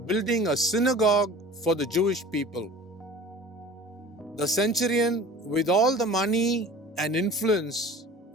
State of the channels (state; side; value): normal; both; correlation 0.42